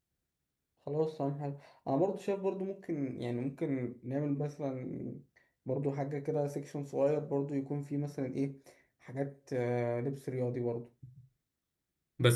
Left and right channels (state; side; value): identical; both; correlation 1.00